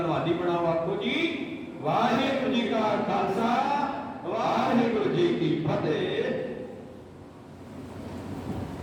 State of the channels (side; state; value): both; identical; correlation 1.00